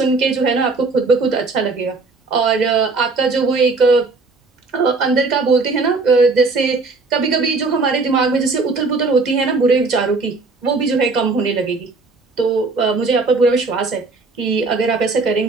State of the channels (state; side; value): quieter; left; 3.9 dB